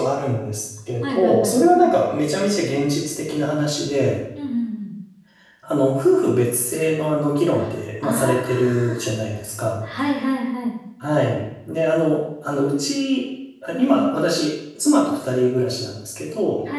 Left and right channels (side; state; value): both; identical; correlation 1.00